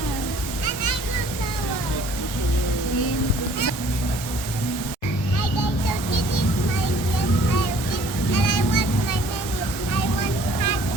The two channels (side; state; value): right; late; 1.2 ms